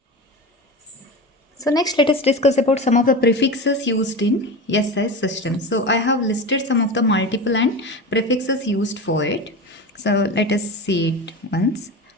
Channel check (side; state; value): both; normal; correlation 0.26